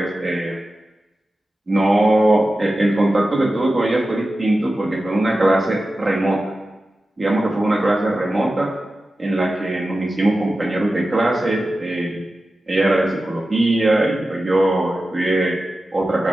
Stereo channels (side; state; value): both; normal; correlation 0.93